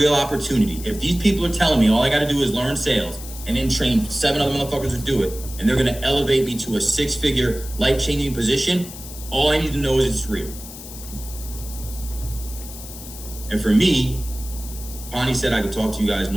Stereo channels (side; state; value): left; noise; hiss, 13 dB below the sound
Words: opportunity, if these people are telling me all I got to do is learn sales and then train 7 other motherfuckers to do it, and they're gonna elevate me to a 6-figure, life-changing position, all I need to know is it's real. And for me, Bonnie said I could talk to you guys